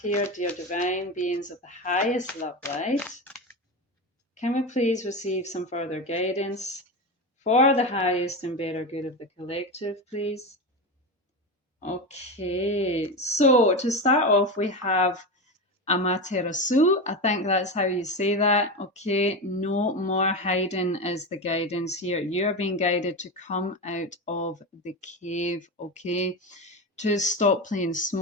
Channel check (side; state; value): both; normal; correlation 0.19